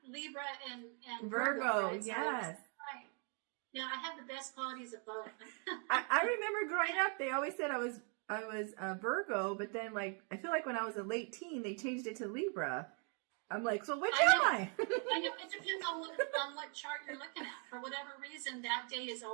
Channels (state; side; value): quieter; left; 39.7 dB